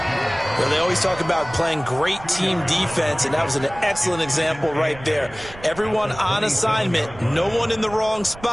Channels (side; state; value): right; noise; rumble, 17 dB below the sound